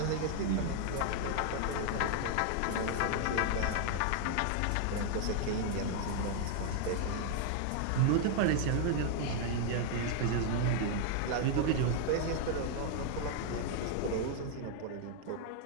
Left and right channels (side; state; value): both; different; correlation 0.00